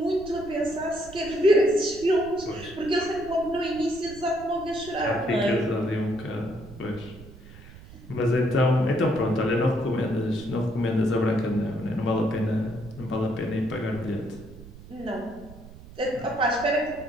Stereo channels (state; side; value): noise; right; rumble, 18 dB below the sound